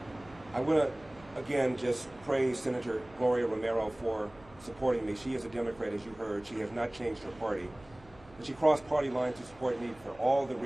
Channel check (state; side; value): noise; right; hum, 24 dB below the sound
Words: I want to again just praise Senator Gloria Romero for supporting me. She is a Democrat, as you heard. She has not changed her party. And she crossed party lines to support me for all the